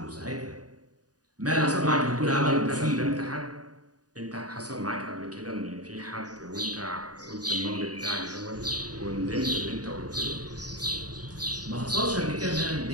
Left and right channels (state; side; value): late; left; 0.68 ms